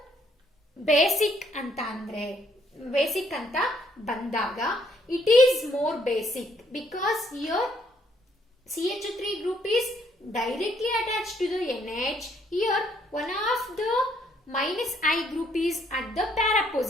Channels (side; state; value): both; normal; correlation 0.68